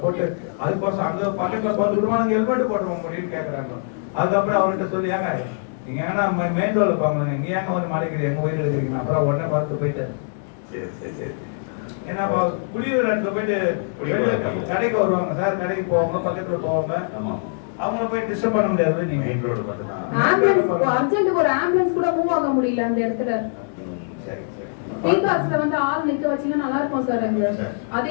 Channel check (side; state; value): right; silent; digital silence